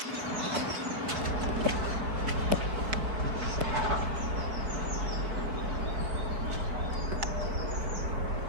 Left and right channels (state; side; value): late; left; 4.6 ms